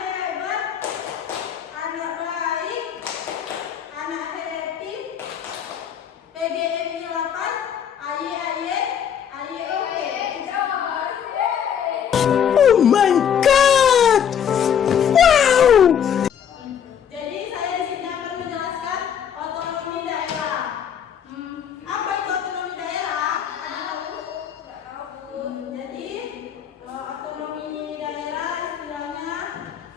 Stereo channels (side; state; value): right; quieter; 8.5 dB